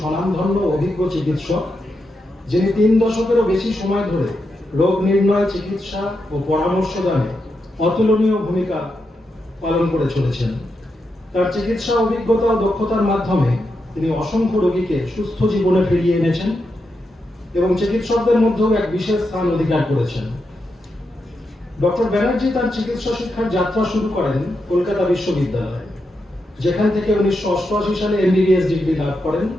অভিজ্ঞ চিকিৎসক, যিনি 3 দশকেরও বেশি সময় ধরে রোগ নির্ণয়, চিকিৎসা ও পরামর্শ দানে অতুলনীয় ভূমিকা পালন করে চলেছেন। তার চিকিৎসা অভিজ্ঞতা ও দক্ষতার মাধ্যমে তিনি অসংখ্য রোগীকে সুস্থ জীবনে ফিরিয়ে এনেছেন এবং চিকিৎসকদের মধ্যেও এক বিশেষ স্থান অধিকার করেছেন। ডক্টর ব্যানার্জি তার চিকিৎসা শিক্ষার যাত্রা শুরু করেন কলকাতা বিশ্ববিদ্যালয়ে, যেখান থেকে 1988 সালে MBBS ডিগ্রি লাভ করেন।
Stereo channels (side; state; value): both; normal; correlation 0.85